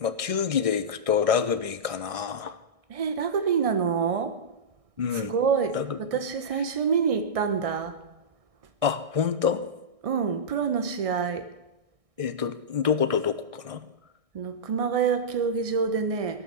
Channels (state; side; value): late; left; 1.6 ms